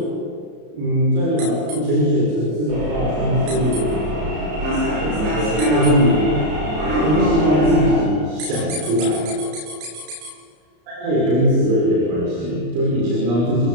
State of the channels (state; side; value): late; left; 33 ms